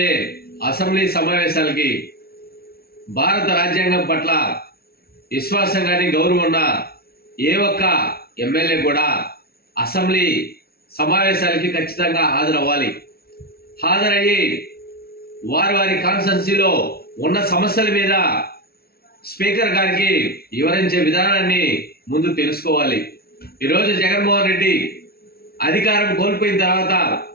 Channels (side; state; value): right; late; 0.44 ms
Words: అసెంబ్లీ సమావేశాలకి భారత రాజ్యాంగం పట్ల విశ్వాసం కానీ గౌరవం ఉన్న ఏ ఒక్క ఎమ్మెల్యే కూడా అసెంబ్లీ సమావేశాలకి ఖచ్చితంగా హాజరవ్వాలి. హాజరయ్యి వారి వారి కాన్స్టిట్యున్సీలో ఉన్న సమస్యల మీద స్పీకర్ గారికి వివరించే విధానాన్ని ముందు తెలుసుకోవాలి. ఈరోజు జగన్మోహన్ రెడ్డి అధికారం కోల్పోయిన తర్వాత